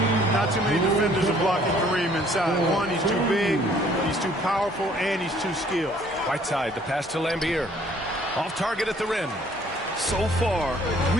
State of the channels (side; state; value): both; normal; correlation 0.59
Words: Not too many defenders are blocking Kareem inside. One, he's too big, he's too powerful, and he's too skilled. Whiteside, the pass to Lambier. Off target at the rim. So far,